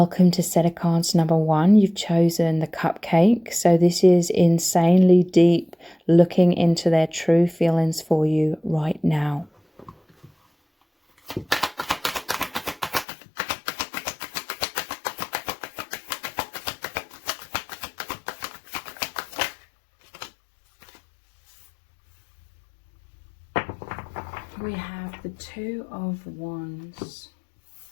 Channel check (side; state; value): right; drops out; at 13.1 s